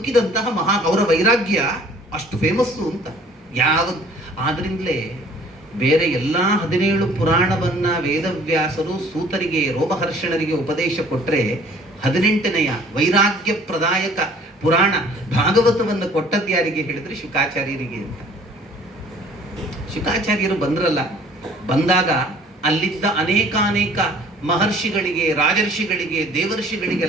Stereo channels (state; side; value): normal; both; correlation 0.54